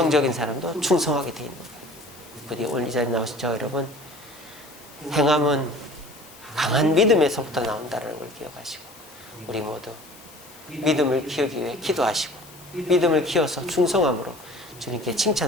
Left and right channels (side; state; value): left; noise; hiss, 22 dB below the sound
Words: 사람도 충성하게 되어 있는 거예요. 부디 오늘 이 자리에 나오신 저 여러분, 행함은 강한 믿음에서부터 나온다는 걸 기억하시고, 우리 모두 믿음을 키우기 위해 기도하시고, 믿음을 키워서 충성함으로 주님께